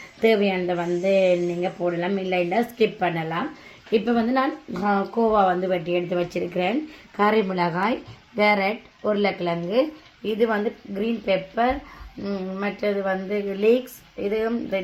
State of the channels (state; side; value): identical; both; correlation 1.00